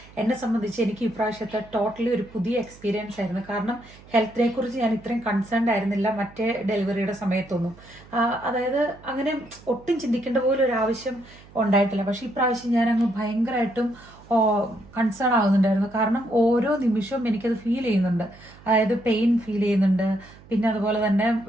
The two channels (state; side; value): noise; right; hum, 23 dB below the sound